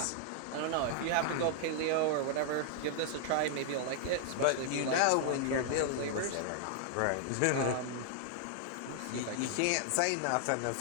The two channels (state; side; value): different; both; correlation -0.01